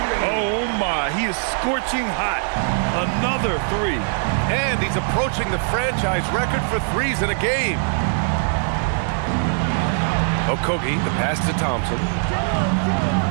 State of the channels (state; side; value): silent; left; digital silence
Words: Oh my, he is scorching hot. Another 3. And he's approaching the franchise record for threes in a game. Okogie, the pass to Thompson.